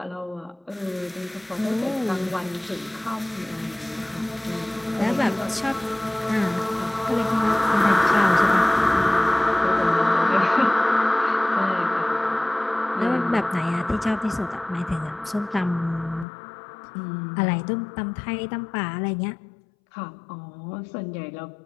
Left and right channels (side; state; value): right; drops out; at 16.2 s